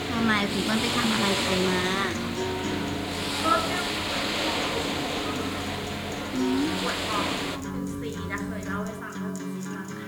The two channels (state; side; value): identical; both; correlation 1.00